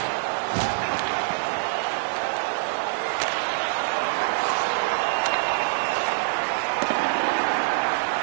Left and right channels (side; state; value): left; silent; digital silence